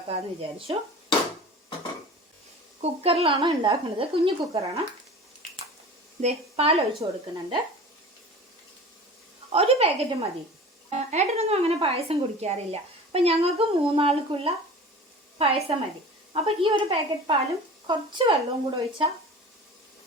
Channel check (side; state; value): both; normal; correlation 0.38